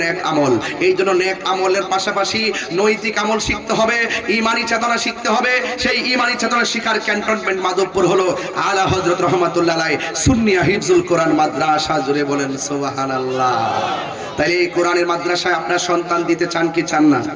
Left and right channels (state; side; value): identical; both; correlation 1.00